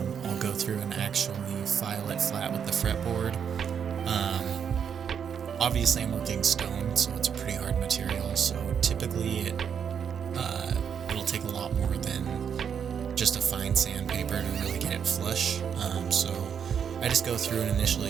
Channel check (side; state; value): left; quieter; 7.6 dB